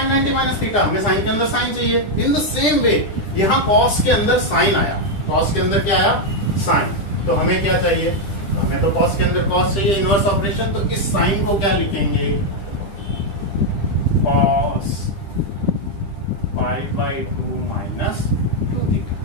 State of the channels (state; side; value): late; right; 9.9 ms